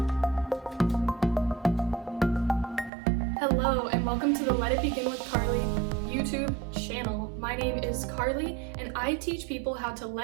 Hello, and welcome to the Let It Begin with Carly YouTube channel. My name is Carly, and I teach people how to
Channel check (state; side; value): drops out; left; at 2.9 s